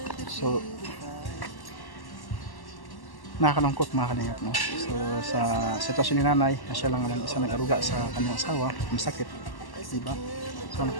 So nakakalungkot mga kalingap, no? So sa sitwasyon ni nanay, siya lang naman isa nag-aruga sa kanyang asawa, masakit, diba? So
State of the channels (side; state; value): right; late; 1.1 ms